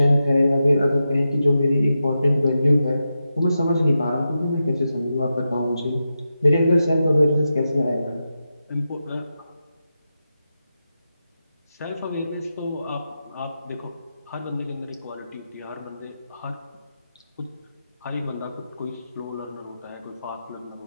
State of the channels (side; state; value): both; inverted; correlation -0.89